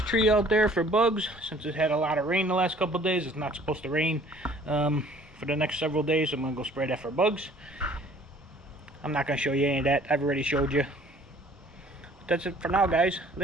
out there for bugs, since it had a lot of rain the last couple of days. It's not supposed to rain for the next several days. So I'm gonna go spray that for bugs. I'm not gonna show you any of that. I've already showed you. But that's it for now, guys.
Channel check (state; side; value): normal; both; correlation 0.54